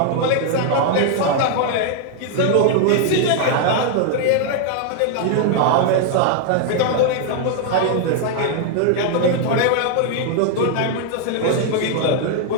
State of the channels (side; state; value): both; different; correlation 0.00